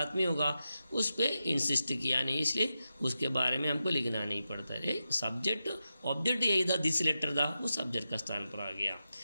आदमी होगा, उस पर इंसिस्ट किया नहीं, इसलिए उसके बारे में हमको लिखना नहीं पड़ता है. सब्जेक्ट ऑब्जेक्ट यही था, दिस लेटर था, वो सब्जेक्ट का स्थान पर आ गया.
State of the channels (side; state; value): both; inverted; correlation -0.90